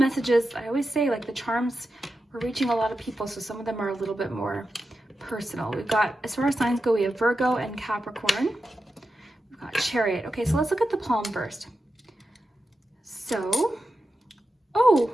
I always say, like the charms, we're reaching a lot of people, so some of them are a little bit more personal. We've got, as far as signs go, we have Virgo and Capricorn. We've got Chariot. Okay, so let's look at the palm first. So, oh,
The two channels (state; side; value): normal; both; correlation 0.90